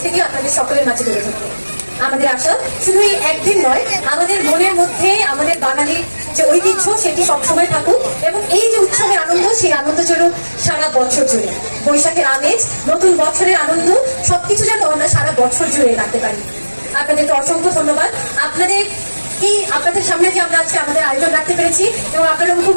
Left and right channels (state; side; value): inverted; both; correlation -1.00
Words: আপনাদের সকলের মাঝে তুলে ধরতে। আমাদের আশা শুধু এই একদিন নয়, আমাদের মনের মধ্যে আমাদের বাঙালির যে ঐতিহ্য সেটি সবসময় থাকুক এবং এই যে উৎসবের আনন্দ, সেই আনন্দ চলুক সারা বছর জুড়ে। বৈশাখের আমেজ, নতুন বছরের আনন্দ সবকিছু যেন আমরা সারা বছর জুড়ে রাখতে পারি। আপনাদেরকে অসংখ্য ধন্যবাদ। আপনাদের সামনে যে আমরা আজকে আমাদের আয়োজন রাখতে পেরেছি এবং আপনারা